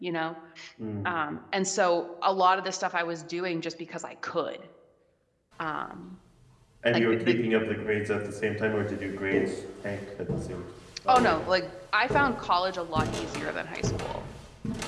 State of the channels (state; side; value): identical; both; correlation 1.00